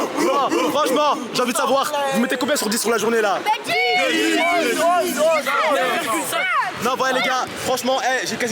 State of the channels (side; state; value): both; identical; correlation 1.00